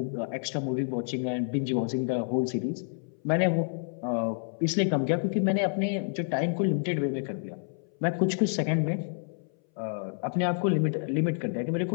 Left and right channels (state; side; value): silent; right; 59 dB below the other